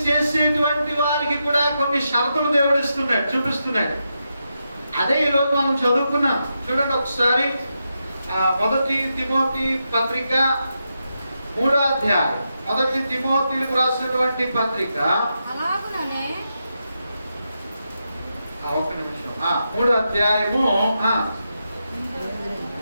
చేసేటువంటి వారికి కూడా కొన్ని షరతులు దేవుడు ఇస్తున్నాడు, చూపిస్తున్నాడు. అదే ఈరోజు మనం చదువుకున్నాం. చూడండి ఒకసారి 1 తిమోతి పత్రిక 3వ అధ్యాయం. 1 తిమోతిలకు రాసినటువంటి పత్రిక ఒక్క నిమిషం. 3వ అధ్యాయము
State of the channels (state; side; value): inverted; both; correlation -0.86